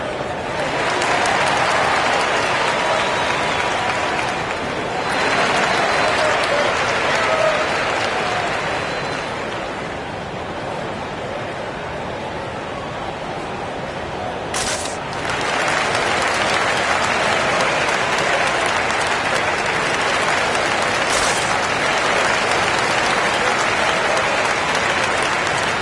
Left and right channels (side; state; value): both; identical; correlation 1.00